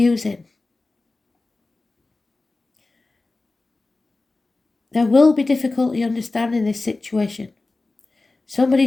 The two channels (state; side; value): quieter; right; 3.3 dB